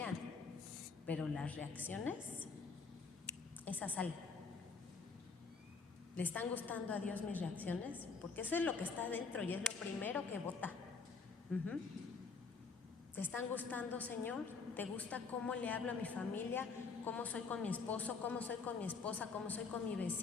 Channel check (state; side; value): quieter; right; 4.8 dB